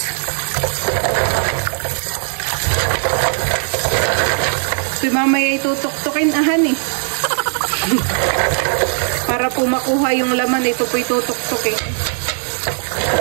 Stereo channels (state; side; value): silent; left; digital silence